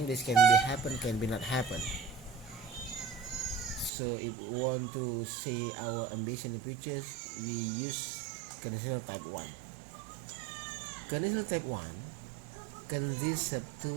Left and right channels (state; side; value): drops out; left; at 3.9 s